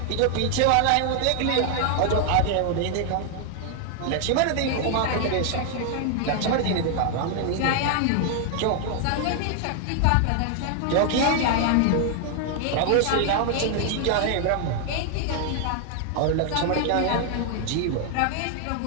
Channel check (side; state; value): both; different; correlation 0.00